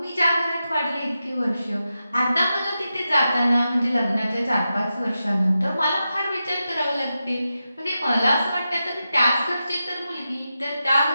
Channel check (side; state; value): both; inverted; correlation -0.90